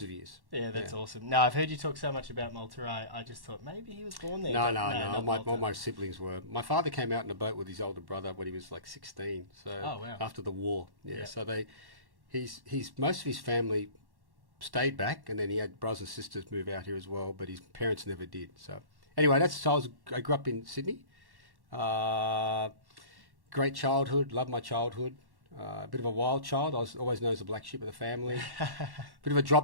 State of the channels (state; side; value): late; left; 1.1 ms